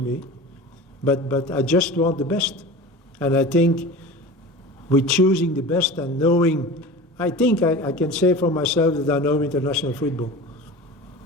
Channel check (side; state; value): both; normal; correlation 0.34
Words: but I just want the best. And I think with choosing the best and knowing, I think I can say for myself that I know international football.